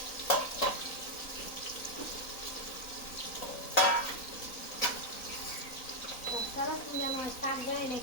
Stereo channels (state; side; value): late; right; 3.9 ms